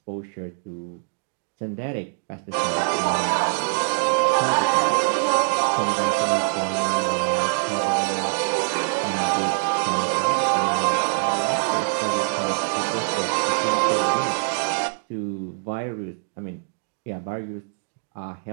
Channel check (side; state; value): left; silent; digital silence